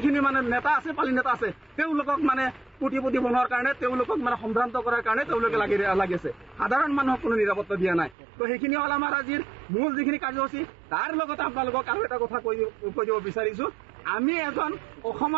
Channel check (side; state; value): left; drops out; at 8.2 s